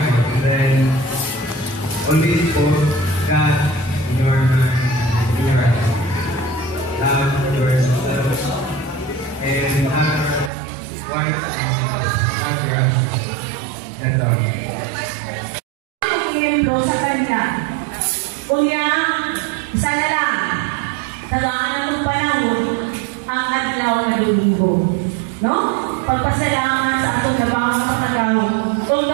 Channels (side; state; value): left; drops out; at 10.5 s